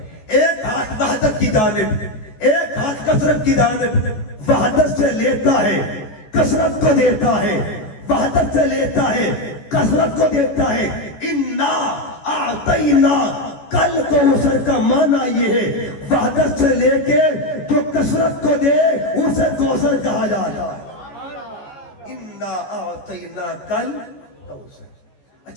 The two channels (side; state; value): right; late; 14 ms